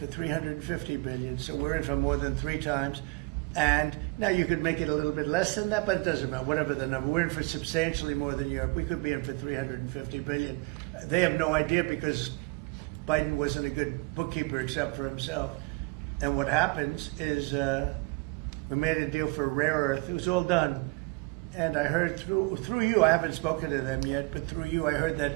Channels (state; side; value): quieter; left; 28.0 dB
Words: $350 billion. So we're in for more than 3 times. And now you could make it a little bit less than that, but it doesn't matter, whatever the number. We're in for substantially more than Europe. We could be in for $350 billion. They have no idea because Biden wasn't a good bookkeeper except for himself. And what happens is we made a deal for rare earth. It was all done. And I heard through you, I haven't spoken to them yet, but through you I heard that